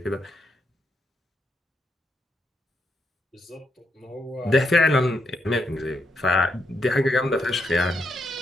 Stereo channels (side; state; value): both; normal; correlation 0.79